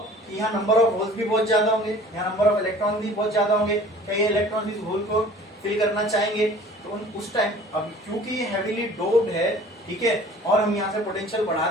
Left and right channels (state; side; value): normal; both; correlation 0.48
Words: यहाँ नंबर ऑफ होल्स भी बहुत ज्यादा होंगे, यहाँ नंबर ऑफ इलेक्ट्रॉन भी बहुत ज्यादा होंगे, क्या ये इलेक्ट्रॉन इस होल को फिल करना चाहेंगे, तो उस टाइम, अब क्योंकि ये हेवीली डोप्ड है, ठीक है, और हम यहाँ से पोटेंशियल